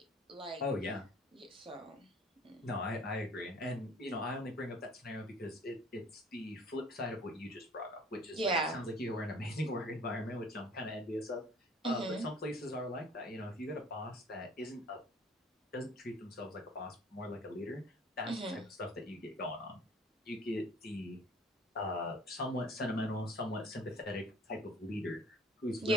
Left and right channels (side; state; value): both; normal; correlation 0.51